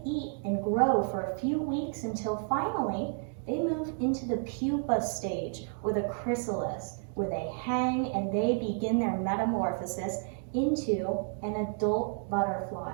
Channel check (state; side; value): silent; left; 57 dB below the other